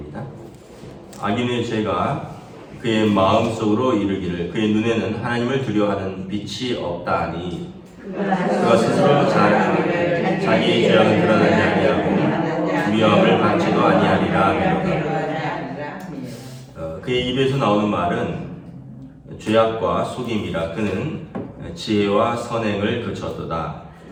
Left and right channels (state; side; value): identical; both; correlation 1.00